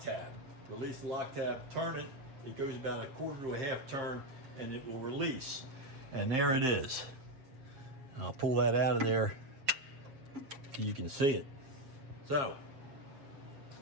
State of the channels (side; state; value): left; late; 7.4 ms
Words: Release the lock tab, turn it. It goes about a quarter to a half turn, and it will release. And there it is. I'll pull that out of there so you can see it. So,